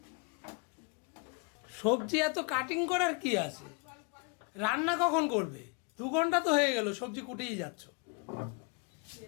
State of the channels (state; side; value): quieter; right; 34.5 dB